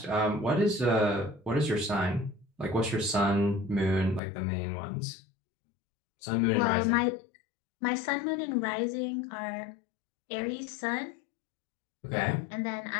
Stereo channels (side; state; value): right; drops out; at 4.2 s